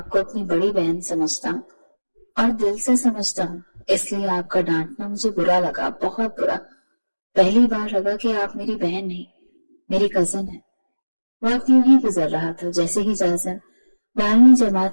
کو اپنی بڑی بہن سمجھتا ہوں اور دل سے سمجھتا ہوں، اس لیے آپ کا ڈانٹنا مجھے برا لگا، بہت برا۔ پہلی بار لگا کہ آپ میری بہن نہیں، میری کزن ہے۔ وقت یوں ہی گزر رہا تھا، جیسے ہی جاسم 12ویں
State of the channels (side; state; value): both; inverted; correlation -1.00